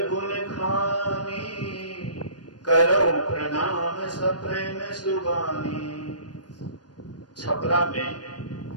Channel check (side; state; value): right; late; 0.69 ms